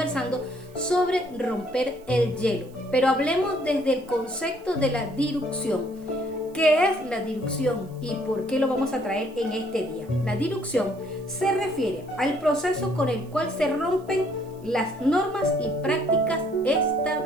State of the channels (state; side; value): noise; right; hiss, 28 dB below the sound